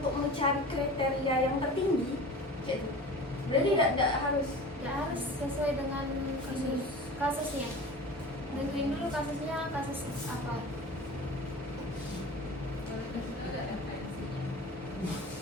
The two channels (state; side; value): normal; both; correlation 0.37